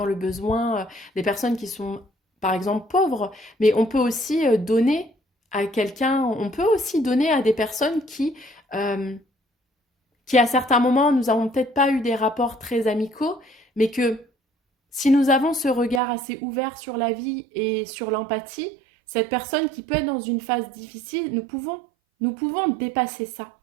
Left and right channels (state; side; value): drops out; left; at 16.0 s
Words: le besoin des personnes qui sont, par exemple, pauvres, mais on peut aussi donner à quelqu'un, on peut aussi donner à des personnes qui à certains moments, nous n'avons peut-être pas eu des rapports très amicaux, mais que si nous avons ce regard assez ouvert sur la vie et sur l'empathie, cette personne qui peut être dans une phase difficile, nous pouvons dépasser ça,